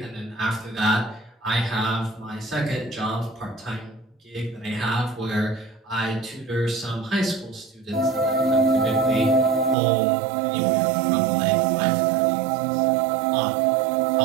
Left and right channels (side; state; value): left; drops out; at 9.8 s